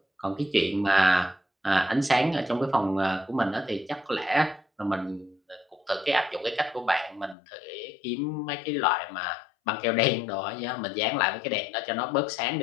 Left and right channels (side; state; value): right; drops out; at 7.4 s